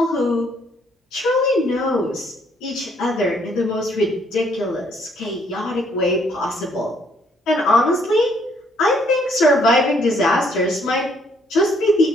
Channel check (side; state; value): both; normal; correlation 0.67